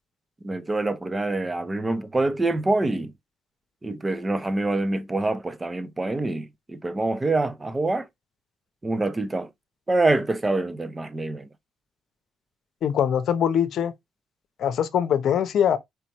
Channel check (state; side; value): normal; both; correlation 0.80